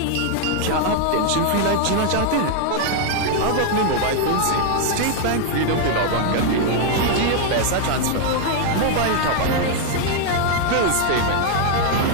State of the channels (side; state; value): both; different; correlation 0.00